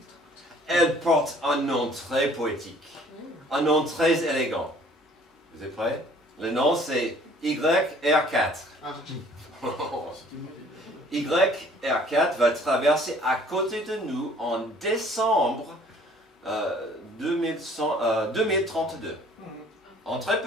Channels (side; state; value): both; normal; correlation 0.55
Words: Elle porte un nom très poétique, un nom très élégant. Vous êtes prêts? Le nom c'est YR4. YR4 va traverser à côté de nous en décembre 2032. En très